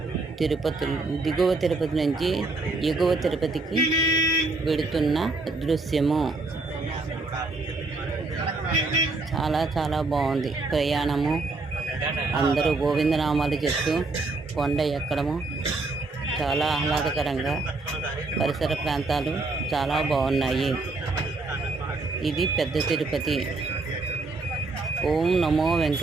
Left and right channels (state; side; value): quieter; left; 3.5 dB